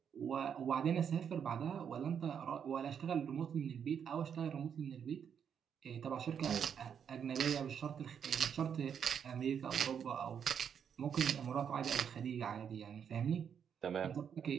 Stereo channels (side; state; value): left; quieter; 7.8 dB